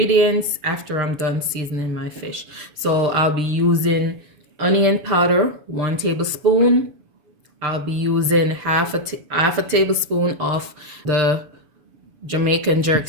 after I'm done seasoning my fish. So I'll be using onion powder, 1 tablespoon. I'll be using half a tablespoon of the Jamaican jerk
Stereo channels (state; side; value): late; left; 7.1 ms